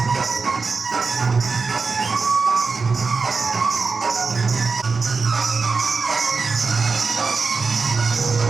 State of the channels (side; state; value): left; quieter; 4.6 dB